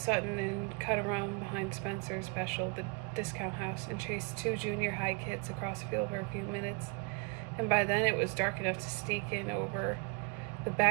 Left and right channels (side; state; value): left; quieter; 30.9 dB